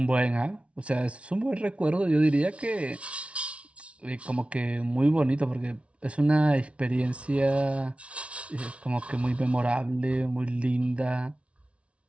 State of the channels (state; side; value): late; left; 0.062 ms